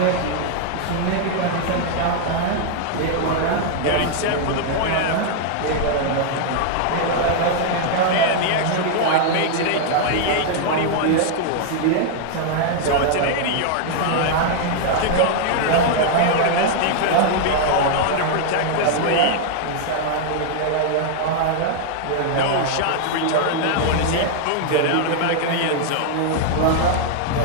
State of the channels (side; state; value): both; different; correlation 0.00